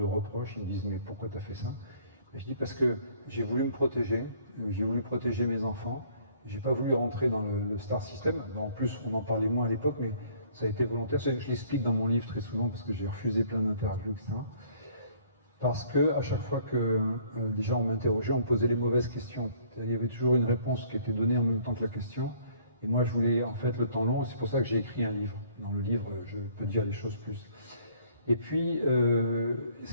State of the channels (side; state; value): both; inverted; correlation -0.58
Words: reprochent. Ils me disent, mais pourquoi tu as fait ça? Et je dis, parce que j'ai voulu me protéger. J'ai voulu protéger mes enfants. J'ai pas voulu rentrer dans le star system. Bon, en plus, on en parlait moins à l'époque, mais ça a été volontaire. Je l'explique dans mon livre très souvent parce que j'ai refusé plein d'interviews, etc. Parce que à chaque fois que les gens m'interrogeaient, on me posait les mauvaises questions. Il y avait toujours une réponse qui était donnée en même temps que la question. Et moi, je voulais en fait le temps long. Et c'est pour ça que j'ai écrit un livre. Dans le livre, je peux dire les choses plus. Et puis,